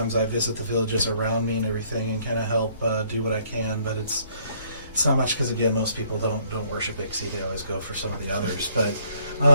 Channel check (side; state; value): both; inverted; correlation -0.64